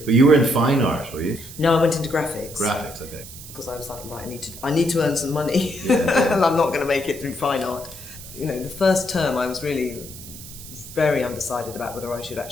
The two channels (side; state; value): right; noise; hiss, 14 dB below the sound